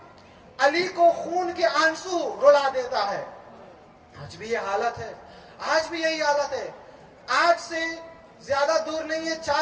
علی کو خون کے آنسو رلا دیتا ہے. آج بھی یہ حالت ہے, آج بھی یہی حالت ہے. آج سے زیادہ دور نہیں ہے,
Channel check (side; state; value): both; identical; correlation 1.00